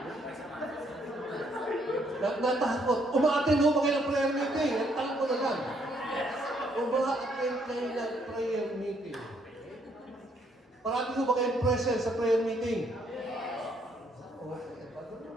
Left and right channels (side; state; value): both; normal; correlation 0.70